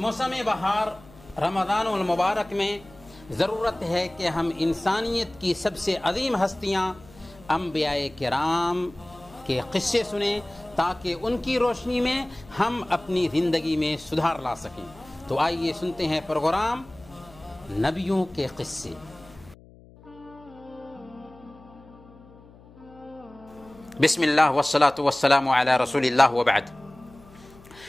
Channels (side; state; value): left; noise; hum, 23 dB below the sound